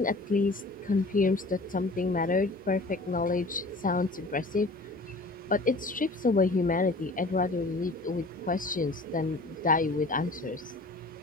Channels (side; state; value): right; quieter; 3.0 dB